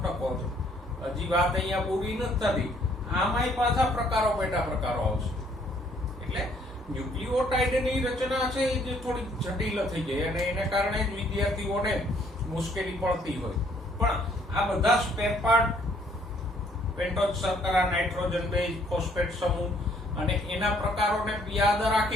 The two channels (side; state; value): both; normal; correlation 0.64